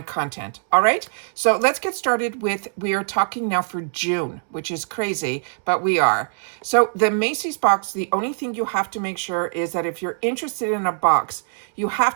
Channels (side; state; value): left; silent; digital silence